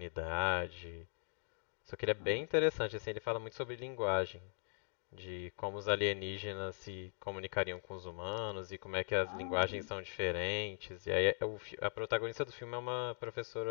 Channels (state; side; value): silent; right; digital silence